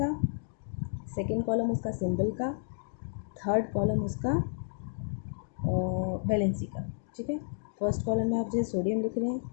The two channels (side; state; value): right; silent; digital silence